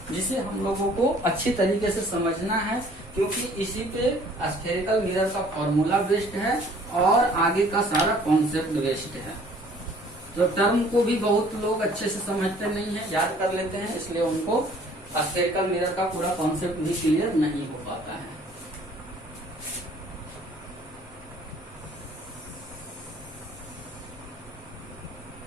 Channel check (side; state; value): both; normal; correlation 0.55